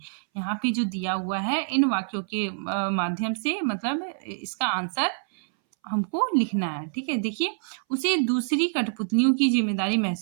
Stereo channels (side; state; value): left; silent; 61 dB below the other